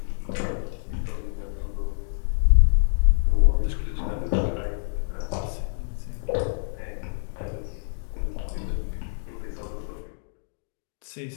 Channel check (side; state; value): right; silent; digital silence